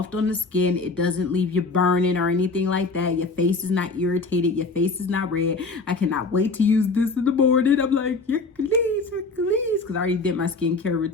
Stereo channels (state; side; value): quieter; right; 3.8 dB